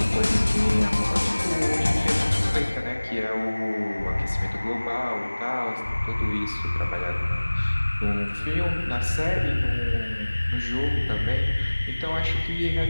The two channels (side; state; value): both; inverted; correlation -1.00